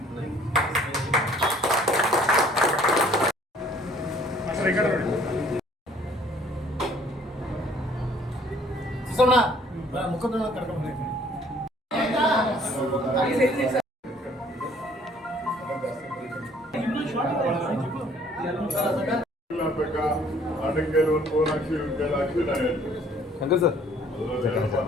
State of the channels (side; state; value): both; normal; correlation 0.58